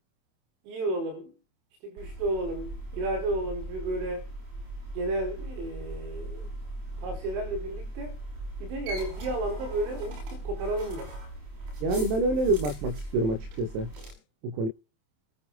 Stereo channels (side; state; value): left; late; 27 ms